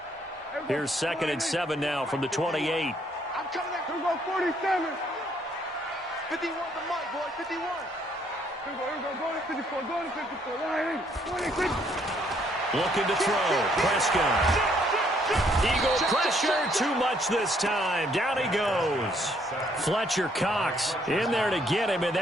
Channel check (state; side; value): normal; both; correlation 0.68